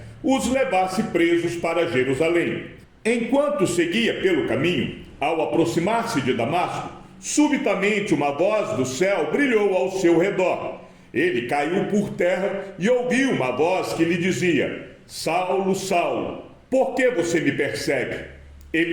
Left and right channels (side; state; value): both; identical; correlation 1.00